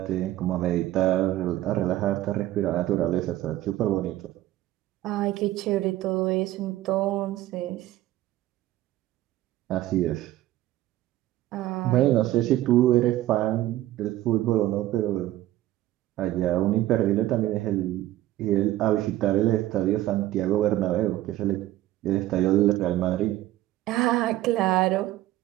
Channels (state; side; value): quieter; left; 15.0 dB